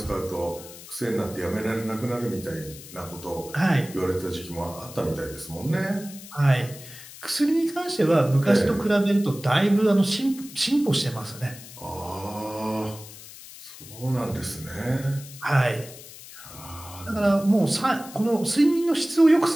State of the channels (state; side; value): noise; left; hiss, 16 dB below the sound